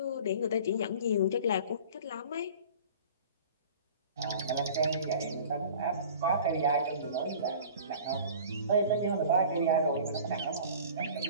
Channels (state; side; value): inverted; both; correlation -0.43